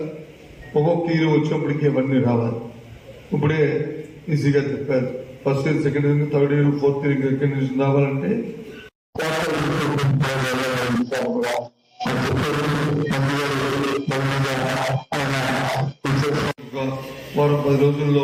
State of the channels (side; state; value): both; identical; correlation 1.00